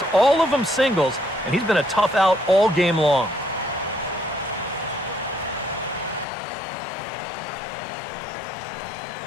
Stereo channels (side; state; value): right; drops out; at 6.2 s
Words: all of them singles, and he's been a tough out all game long.